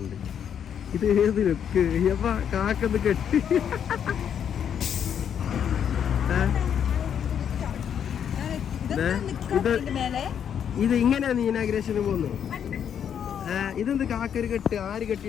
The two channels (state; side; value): quieter; right; 8.5 dB